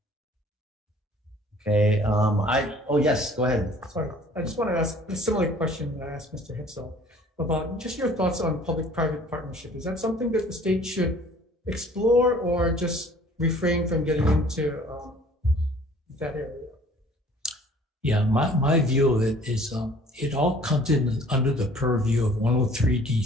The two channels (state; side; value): normal; both; correlation 0.53